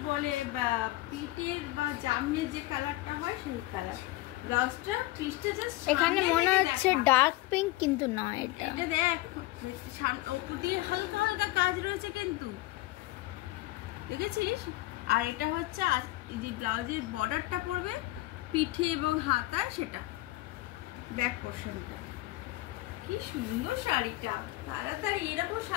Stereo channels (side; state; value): right; quieter; 18.2 dB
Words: বলে, বা পিটের বা জামনের যে কালারটা হয় সেই কালার। ব্লাউজটা পিসটা জাস্ট এখানে মনে হচ্ছে ডার্ক পিঙ্ক, কিন্তু নয়। এটা দেখ উপর দিয়ে হালকা হালকা কাজ রয়েছে কিন্তু, দেখেছিস? আর এটা হচ্ছে যে ব্লাউজের বর্ডারটা পড়বে পিঠে এবং হাতায়, সেটা ব্যাক পোর্শনটা। কি সুন্দর শাড়িটা, তাড়াতাড়ি এরকম